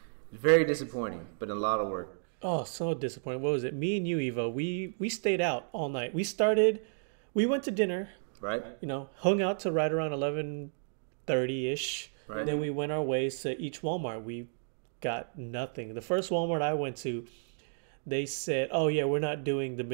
It's very disappointing, but a lot of work. Oh, so disappointing. What was it? Me and you, Evo, we stayed out all night. We went to dinner, Right? hung out to right around 11:30-ish. Right. Then we went our ways to each Walmart. We got nothing. The first Walmart I went to, they said, oh yeah, we're not doing the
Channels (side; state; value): left; silent; digital silence